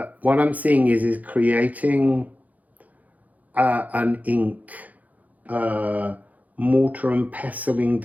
what I'm seeing is creating an ink, mortar and pestling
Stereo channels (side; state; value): left; late; 0.077 ms